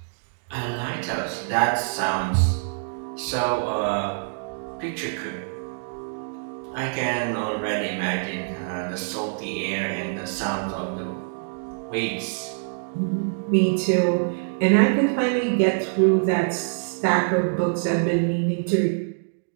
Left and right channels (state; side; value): silent; left; digital silence